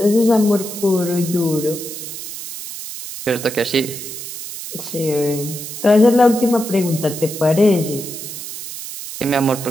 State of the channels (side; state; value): right; noise; hiss, 9 dB below the sound